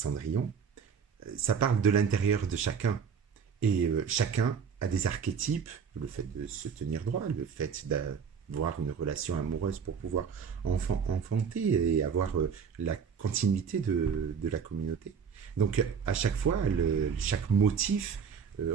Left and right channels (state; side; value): quieter; left; 6.6 dB